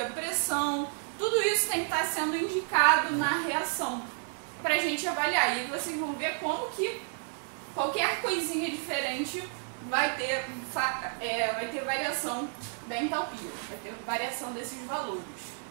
pressão, tudo isso tem que estar sendo indicado na reação para a gente avaliar. E vocês vão ver como que qualquer coisinha diferente vai ter variação da entalpia, vai ter variação desses valores.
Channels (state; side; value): silent; left; 57 dB below the other